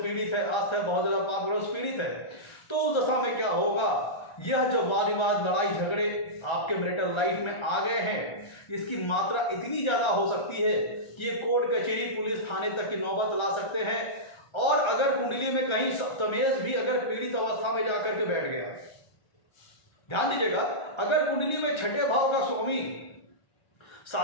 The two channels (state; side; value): late; right; 1.3 ms